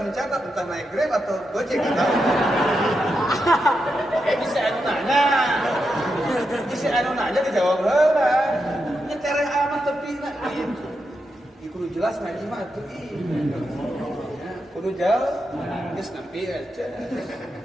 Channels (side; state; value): both; normal; correlation 0.86